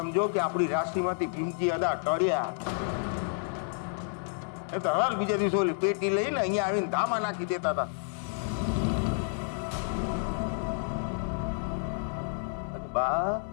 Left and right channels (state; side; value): silent; right; digital silence